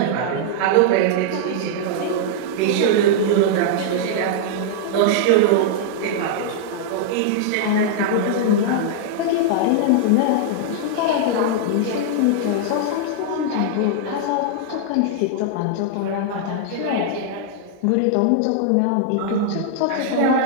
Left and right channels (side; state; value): both; different; correlation -0.01